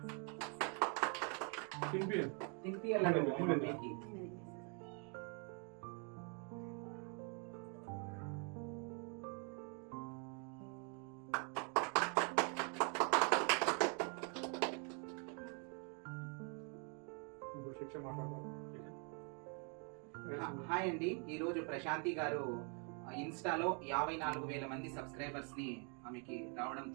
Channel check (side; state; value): left; quieter; 38.1 dB